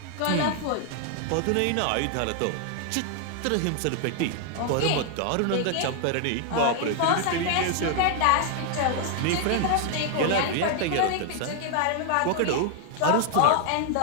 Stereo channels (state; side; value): different; both; correlation 0.00